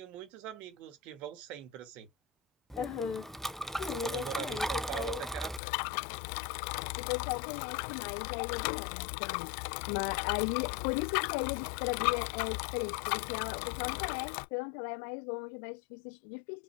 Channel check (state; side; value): drops out; right; at 5.6 s